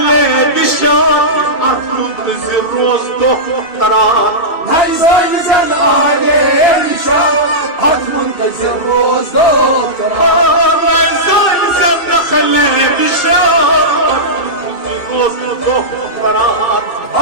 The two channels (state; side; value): late; right; 2.7 ms